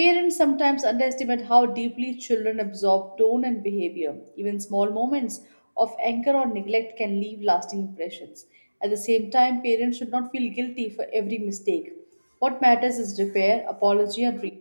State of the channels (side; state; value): both; inverted; correlation -1.00